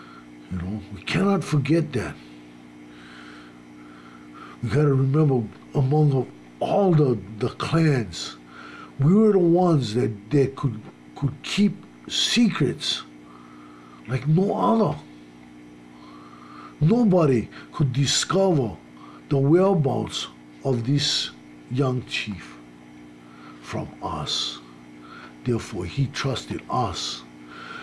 You know, we cannot forget that. We got to remember, among all the clans, we were the ones that could keep secrets like no other. Nobody could discover the whereabouts of this young chief from us. Therefore, he trusted us.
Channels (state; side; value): identical; both; correlation 1.00